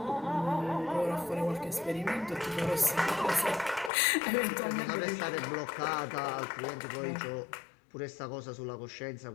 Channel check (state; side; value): drops out; right; at 3.9 s